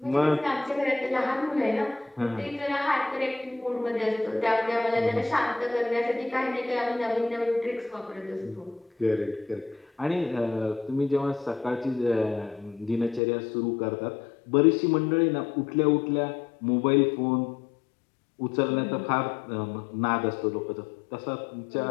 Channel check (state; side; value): drops out; right; at 13.2 s